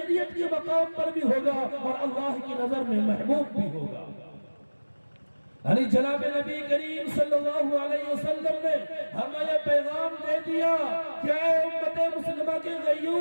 کے مقام پر بھی ہوگا اور اللہ کی نظر میں محبوب بھی ہوگا۔ یعنی جناب نبی کریم صلی اللہ علیہ وسلم نے ہمیں یہ پیغام دے دیا کہ اے امت مسلمہ کے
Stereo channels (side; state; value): both; inverted; correlation -1.00